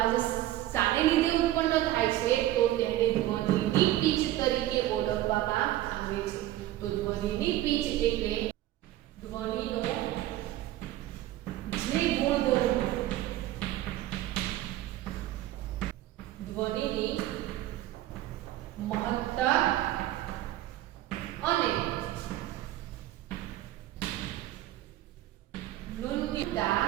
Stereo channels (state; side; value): quieter; left; 14.7 dB